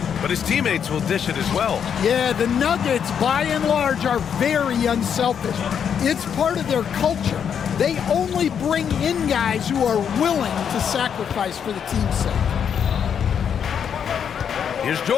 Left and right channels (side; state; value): right; quieter; 7.8 dB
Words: but his teammates will dish it as well. Yeah, the Nuggets, by and large, are very unselfish. It's part of their culture. They only bring in guys who are willing to sacrifice for the team's sake. Here's